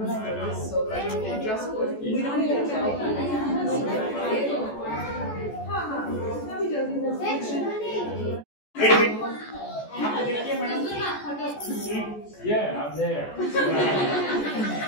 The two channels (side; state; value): right; late; 14 ms